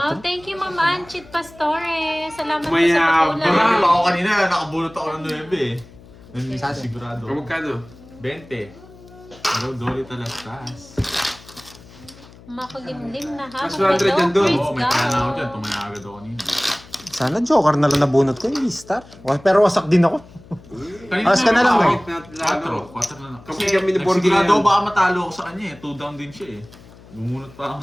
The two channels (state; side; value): noise; left; hum, 22 dB below the sound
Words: 4. thank you, Ma'am Anchit Pastore. Salamat po sa Mayabang. pag-ulan. Ako kanina, nakabulot ako ng 9 eh. Sigurado. O magkano? 20. Hello, Dolly Talastas. Makulimlim na ha. Mas 100 yan doon. Oo, may pala ako dyan. Tumaya agad ako kanina. Sana joker na lang nabunot ko, hindi star. Pero wasak din ako. Alas ka na lang, Bakit eh. natin lalo? 4 na lang. Kami Kasi kami ni Borgie nagsigurado yan. ako baka matalo ako sa kanya eh. 2 down din siya eh. Bumunot pa ako